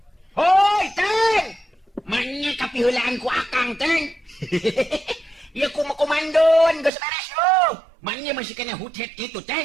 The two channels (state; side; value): drops out; left; at 6.9 s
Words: Hoi, Teng. Manya kapiheulaan ku Akang, Teng. Ya komandon geus beres yo. Manya masih kena hutet kitu,